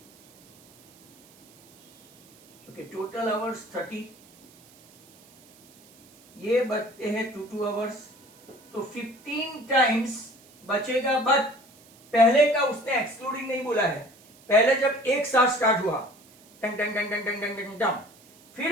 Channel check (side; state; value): right; noise; hiss, 27 dB below the sound